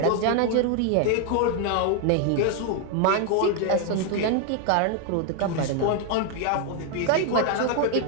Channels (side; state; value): both; different; correlation 0.00